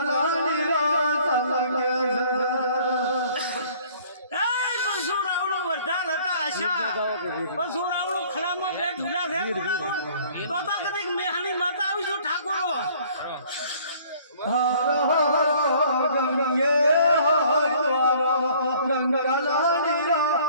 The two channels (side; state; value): both; inverted; correlation -0.55